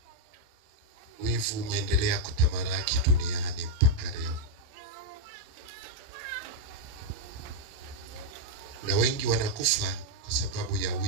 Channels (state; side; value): late; left; 28 ms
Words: wivu umeendelea kutamalaki duniani mpaka leo, na wengi wanakufa kwa sababu ya